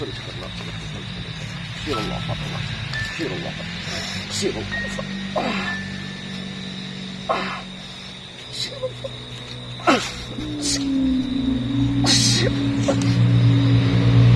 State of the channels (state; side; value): identical; both; correlation 1.00